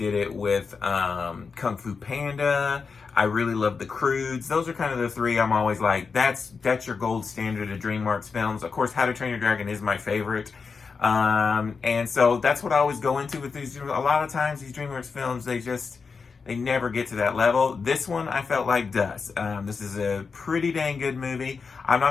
it with Kung Fu Panda. I really love the Croods. Those are kind of the three I'm always like, that's your gold standard of DreamWorks films. Of course, How to Train Your Dragon is my favorite. And so that's what I always go into with these. A lot of times these DreamWorks films, they never get to that level. This one I felt like does. This is a pretty dang good movie. I'm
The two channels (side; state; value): right; quieter; 5.1 dB